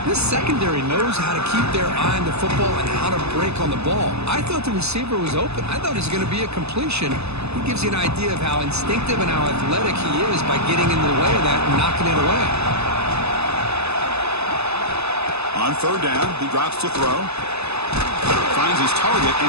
This secondary knows how to keep their eye on the football and how to break on the ball. I thought the receiver was open. I thought it was going to be a completion. It gives you an idea of how instinctive and how athletic he is by getting in the way of that and knocking it away. On third down, he drops to throw. Finds his target,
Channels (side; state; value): left; late; 0.79 ms